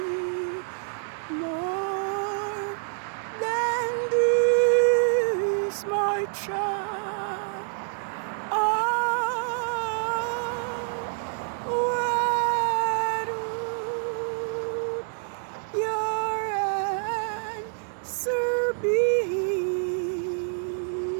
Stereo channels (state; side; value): silent; left; digital silence